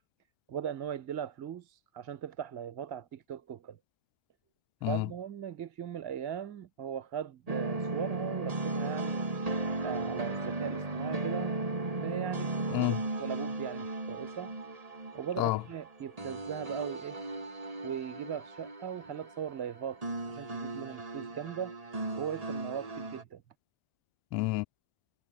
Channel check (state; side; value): late; left; 1.8 ms